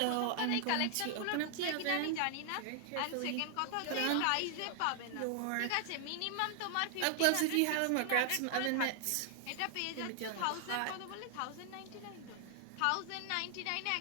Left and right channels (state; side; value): different; both; correlation -0.01